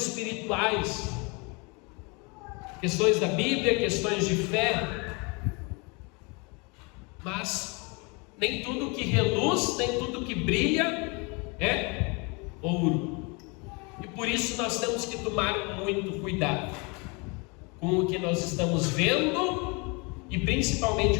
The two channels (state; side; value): quieter; right; 30.2 dB